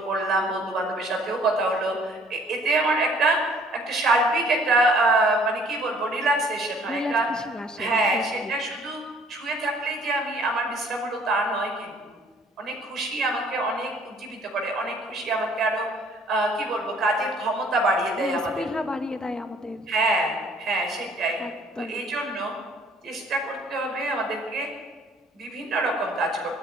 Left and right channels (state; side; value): normal; both; correlation 0.57